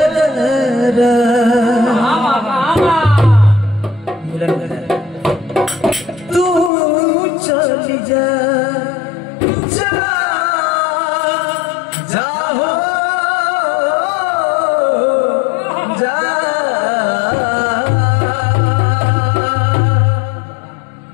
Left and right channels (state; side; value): drops out; right; at 6.7 s